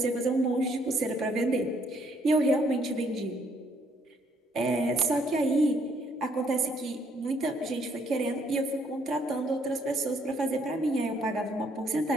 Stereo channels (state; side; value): normal; both; correlation 0.68